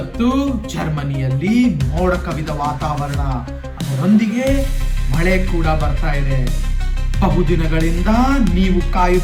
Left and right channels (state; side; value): identical; both; correlation 1.00